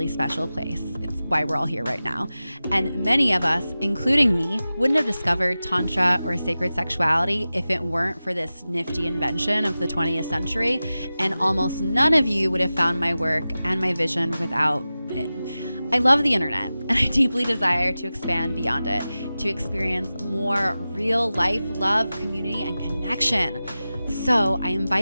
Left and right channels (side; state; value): both; inverted; correlation -0.95